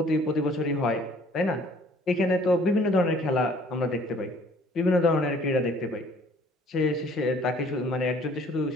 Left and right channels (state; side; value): normal; both; correlation 0.56